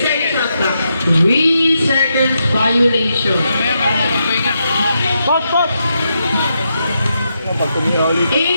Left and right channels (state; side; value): inverted; both; correlation -0.83